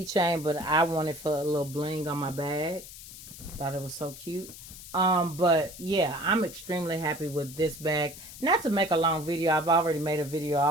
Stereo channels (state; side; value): noise; left; hiss, 15 dB below the sound